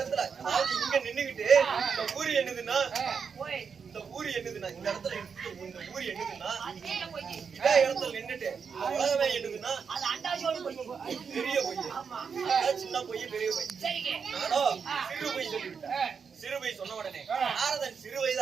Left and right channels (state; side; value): quieter; left; 6.2 dB